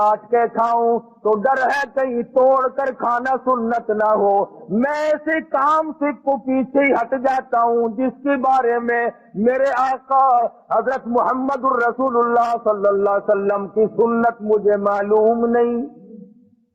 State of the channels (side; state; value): both; identical; correlation 1.00